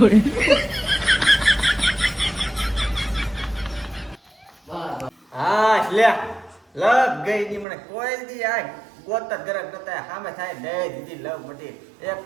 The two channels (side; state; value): left; drops out; at 7.7 s